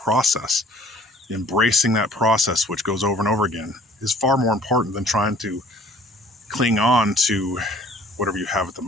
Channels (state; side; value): normal; both; correlation 0.54